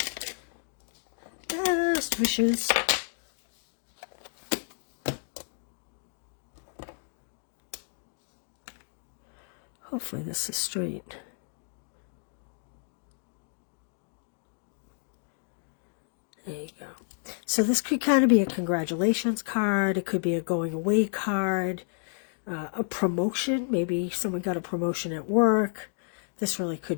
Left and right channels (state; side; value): silent; right; 56 dB below the other